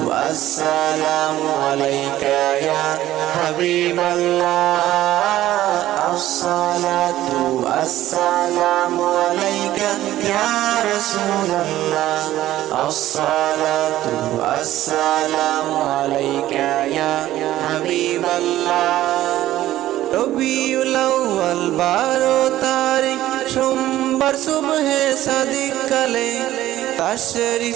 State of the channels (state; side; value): quieter; left; 14.2 dB